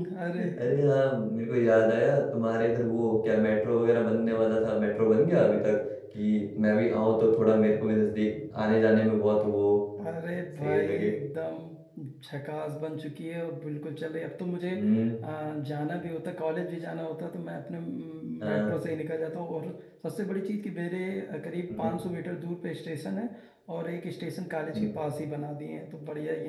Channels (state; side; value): identical; both; correlation 1.00